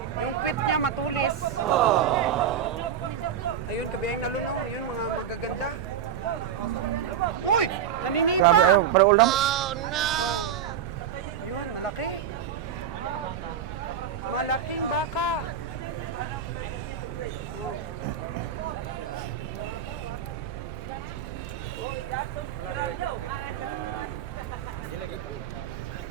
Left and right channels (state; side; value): quieter; left; 8.5 dB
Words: Yung pit niya matulis. Ayun, kabiheng Nalon, no? Yun, mga magaganda. Uy! Naninipa! Para ulam. Oh. Yun, malaki. Malaking baka. Oh.